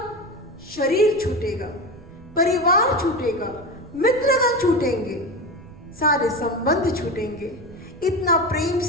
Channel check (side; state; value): right; noise; rumble, 20 dB below the sound